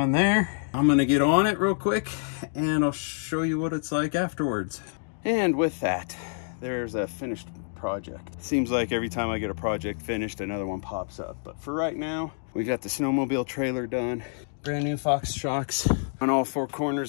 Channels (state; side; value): silent; right; digital silence